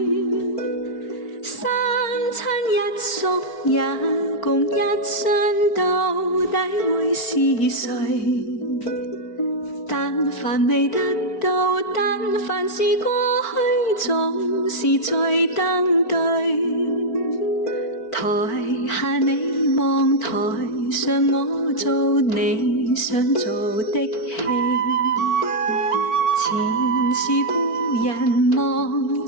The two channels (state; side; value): late; right; 4.4 ms